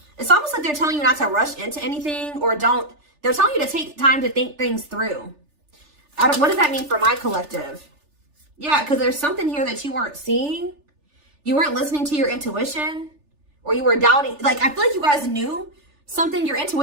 It's almost like they're telling you not to rush into anything or they're telling you to take time to think things through. What does that mean for my collective? Yeah, because there's something here that you weren't seeing. You weren't listening to your intuition, or you were doubting. Like, I feel like you guys knew something. Your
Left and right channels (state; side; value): late; left; 3.4 ms